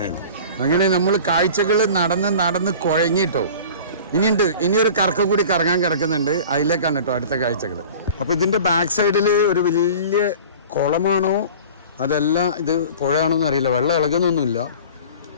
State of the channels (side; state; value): both; inverted; correlation -0.41